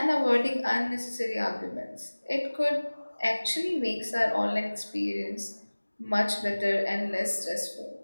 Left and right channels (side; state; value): both; inverted; correlation -1.00